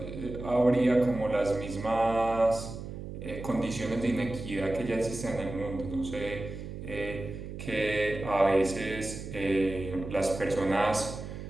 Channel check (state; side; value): noise; right; hum, 9 dB below the sound